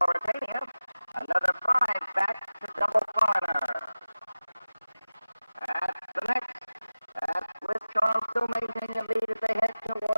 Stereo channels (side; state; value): both; inverted; correlation -0.97